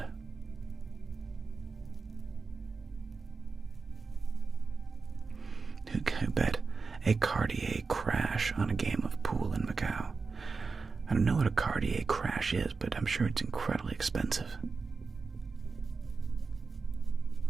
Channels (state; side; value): quieter; left; 4.5 dB